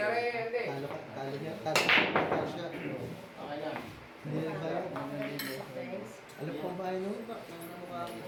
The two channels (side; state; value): both; identical; correlation 1.00